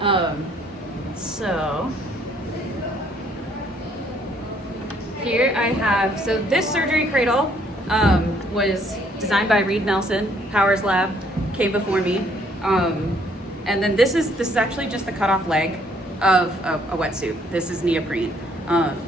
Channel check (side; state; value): both; normal; correlation 0.65